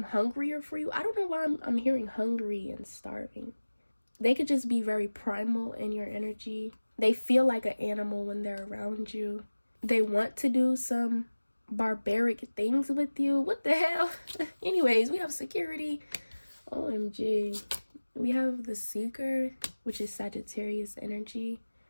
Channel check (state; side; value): inverted; both; correlation -1.00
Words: hungrier for you. I don't know why I'm hearing hungry and starving. They could just be very primal in your energy. They feel like an animal when they're around you. They want to do some barbaric things with you. What the hell? Anyways, we have security. OMG. We have the Seeker, which is Sagittarius energy.